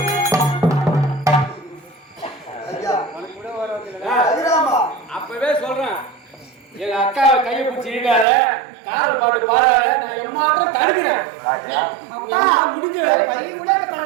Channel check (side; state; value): left; drops out; at 8.2 s